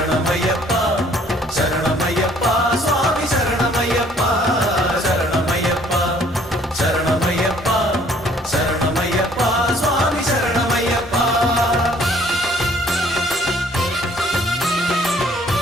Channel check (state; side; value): normal; both; correlation 0.59